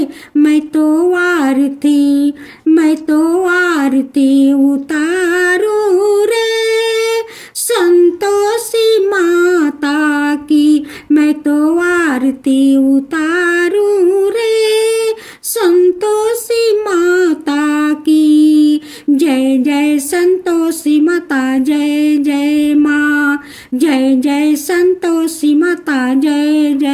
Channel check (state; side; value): identical; both; correlation 1.00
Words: मैं तो आरती, मैं तो आरती उतारो रे संतोषी माता की। मैं तो आरती उतारो रे संतोषी माता की। जय जय संतोषी माता, जय जय माँ। जय जय संतोषी माता, जय